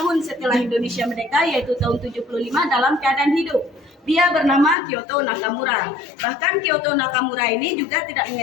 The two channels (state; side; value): drops out; right; at 4.8 s